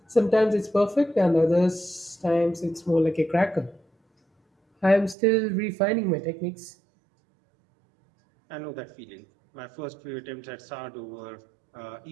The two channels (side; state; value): left; drops out; at 5.2 s